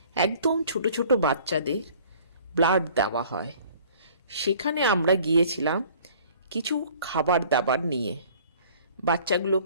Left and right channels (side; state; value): both; inverted; correlation -0.52